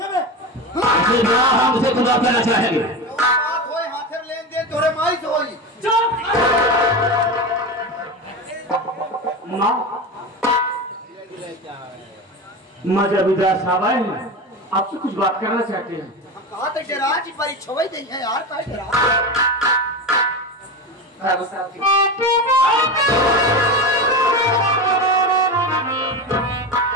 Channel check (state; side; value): normal; both; correlation 0.22